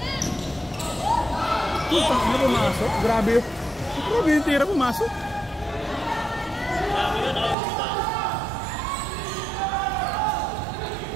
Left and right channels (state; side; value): drops out; left; at 7.6 s